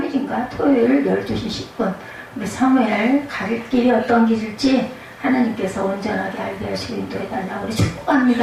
토요일 12시 10분 우리 사무엘 갈 길이 어떤 길일지 하나님께서 온전하게 알게 하시고 인도해달라고 우리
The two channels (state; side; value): identical; both; correlation 1.00